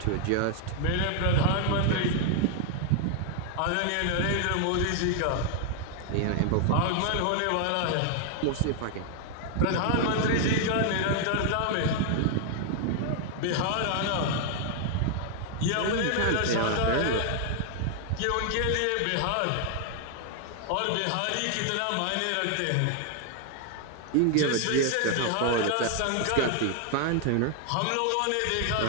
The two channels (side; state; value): both; different; correlation 0.00